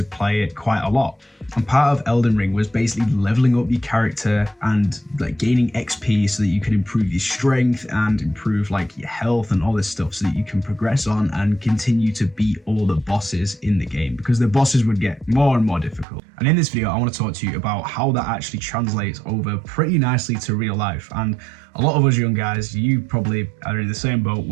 play it quite a lot. And part of Elden Ring was basically leveling up your character and like gaining XP so that you can improve your strength and improve like your health and all this stuff so that you can progress on and continue to beat all the bosses in the game, because the bosses would get more and more difficult. And in this video, I want to talk to you about how that actually translates over pretty nicely to real life. And a lot of us young guys, you probably are in the same boat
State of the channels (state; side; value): drops out; left; at 16.1 s